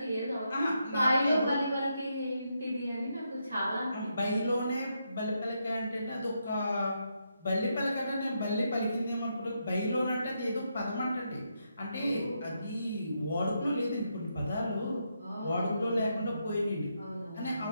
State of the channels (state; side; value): inverted; both; correlation -0.81